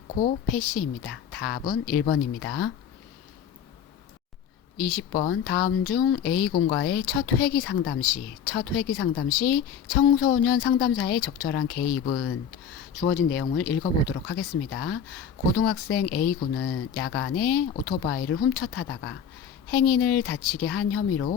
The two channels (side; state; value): right; quieter; 7.8 dB